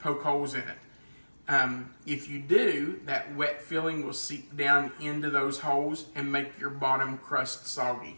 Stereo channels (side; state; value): both; inverted; correlation -1.00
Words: holes in it. If you do, that wet filling will seep down into those holes and make your bottom crust